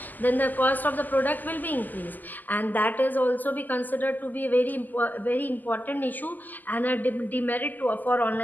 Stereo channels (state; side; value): late; right; 0.085 ms